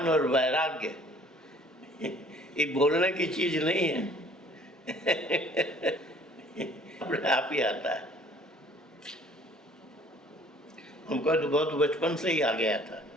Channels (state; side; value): normal; both; correlation 0.54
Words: और वैराग्य ये बोलने की चीज नहीं है। अपने आप ही आता है। हमको तो बहुत बचपन से ही आ गया था।